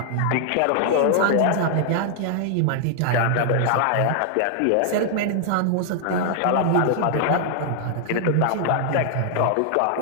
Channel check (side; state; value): both; different; correlation 0.00